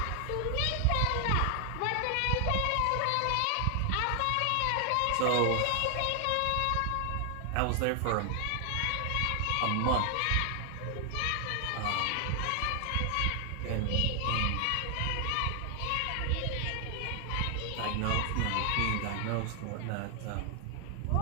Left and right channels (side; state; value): both; different; correlation 0.00